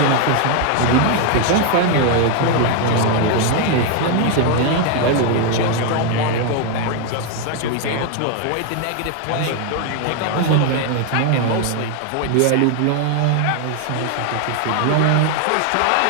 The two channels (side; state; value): both; different; correlation 0.01